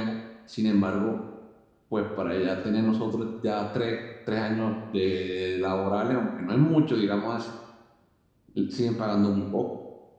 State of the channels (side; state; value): both; identical; correlation 1.00